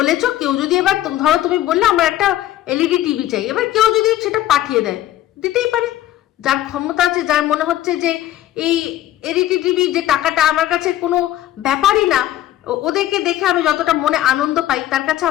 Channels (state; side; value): quieter; right; 13.4 dB